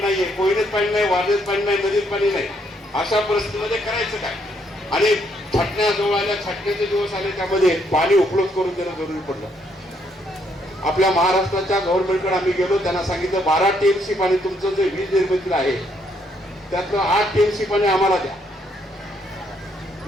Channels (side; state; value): both; normal; correlation 0.72